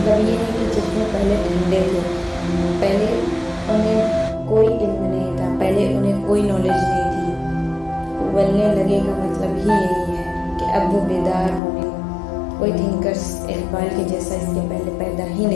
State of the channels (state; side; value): drops out; right; at 11.6 s